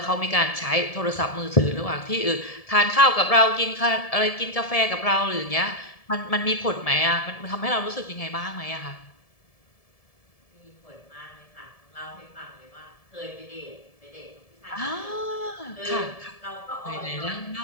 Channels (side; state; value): right; late; 1.7 ms